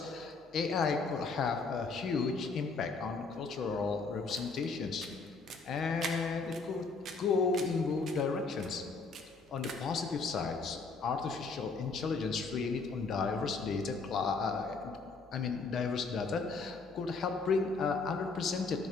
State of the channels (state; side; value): quieter; right; 4.2 dB